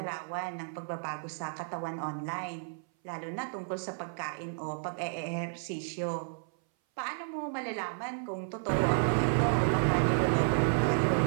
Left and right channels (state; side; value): silent; left; 56 dB below the other